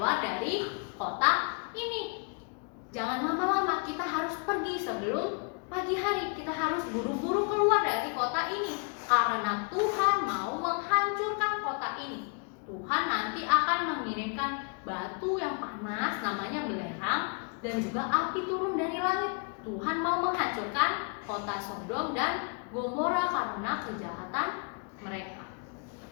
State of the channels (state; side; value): quieter; right; 39.7 dB